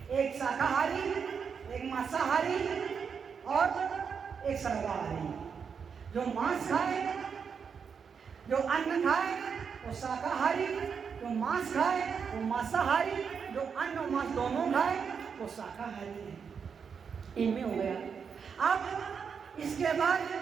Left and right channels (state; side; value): quieter; left; 6.4 dB